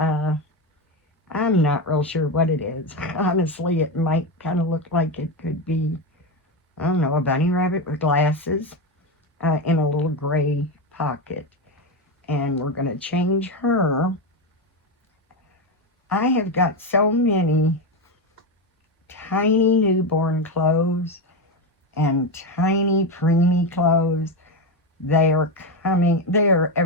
I'm not real sure what it is. Honestly, it might kind of look like it could be, I don't know, a bunny rabbit with glasses in a little gray pocket. And we're going to change her. I have got so many tiny newborn clothes and tiny preemie clothes. They are coming, they are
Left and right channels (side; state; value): both; normal; correlation 0.13